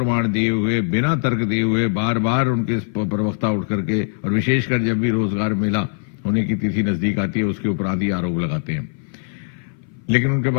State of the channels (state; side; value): silent; right; 59 dB below the other